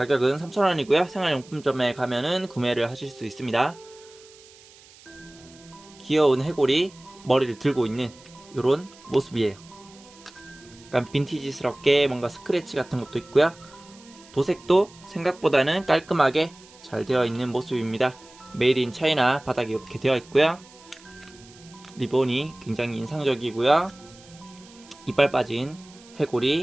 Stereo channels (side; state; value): right; noise; hiss, 24 dB below the sound